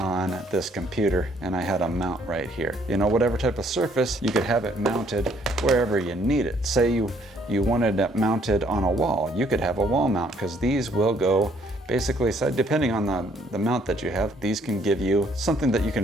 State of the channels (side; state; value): both; normal; correlation 0.65